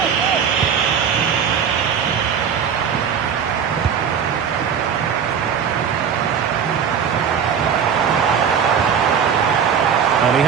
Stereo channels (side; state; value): left; quieter; 7.5 dB